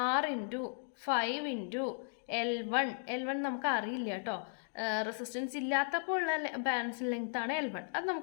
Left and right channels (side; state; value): right; silent; digital silence